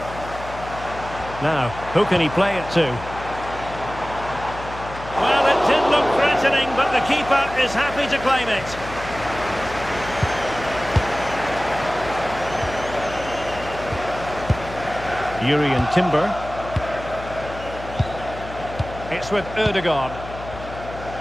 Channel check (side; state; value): left; noise; hum, 12 dB below the sound